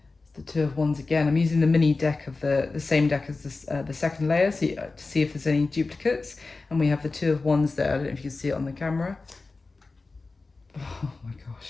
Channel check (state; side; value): quieter; right; 3.7 dB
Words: It's the Two of Wands again. I'm using the mini deck of the same deck as this, the second layer, so to see if there's any duplicates. And we have the Two of Wands there. I don't know if you can see it on the camera. Oh my gosh.